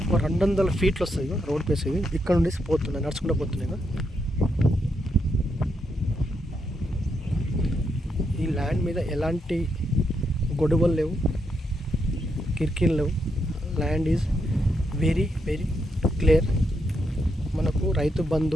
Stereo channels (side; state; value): both; normal; correlation 0.80